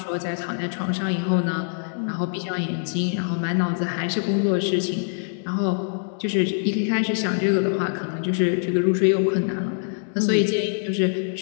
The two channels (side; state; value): right; silent; 63 dB below the other